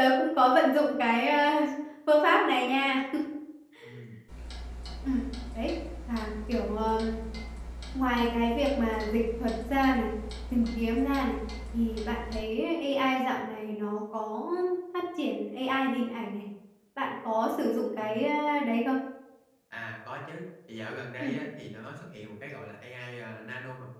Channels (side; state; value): both; identical; correlation 1.00